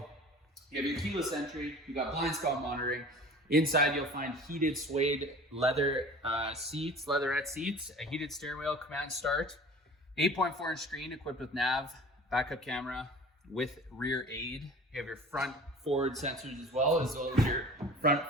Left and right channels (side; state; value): both; normal; correlation 0.42